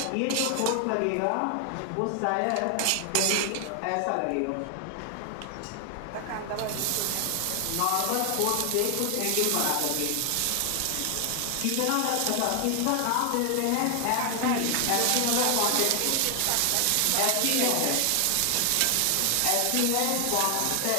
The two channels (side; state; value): both; different; correlation 0.00